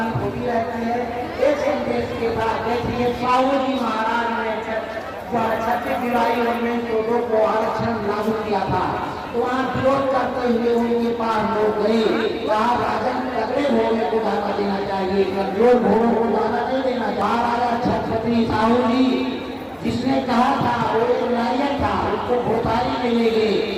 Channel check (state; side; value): identical; both; correlation 1.00